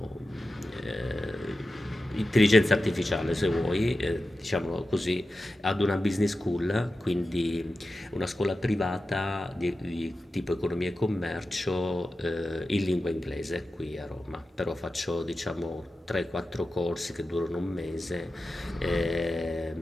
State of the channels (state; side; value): normal; both; correlation 0.93